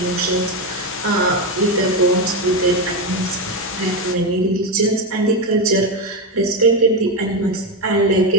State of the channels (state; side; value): normal; both; correlation 0.11